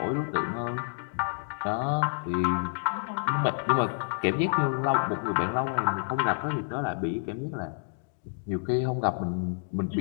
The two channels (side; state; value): right; silent; digital silence